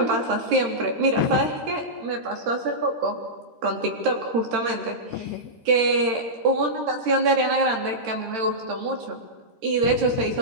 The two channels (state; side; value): late; left; 13 ms